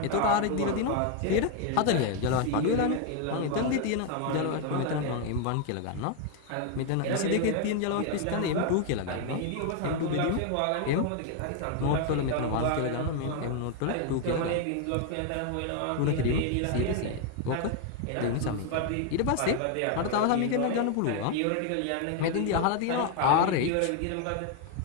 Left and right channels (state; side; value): different; both; correlation 0.01